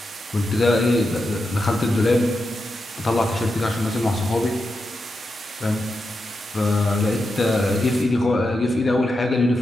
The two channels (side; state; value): both; normal; correlation 0.87